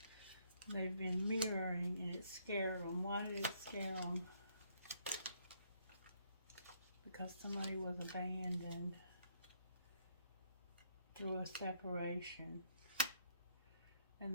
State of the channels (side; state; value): both; inverted; correlation -0.69